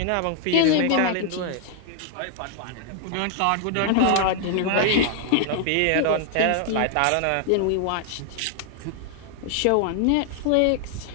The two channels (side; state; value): both; different; correlation 0.00